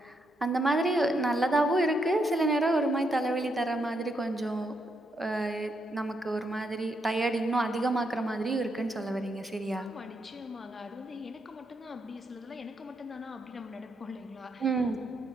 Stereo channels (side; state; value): both; normal; correlation 0.79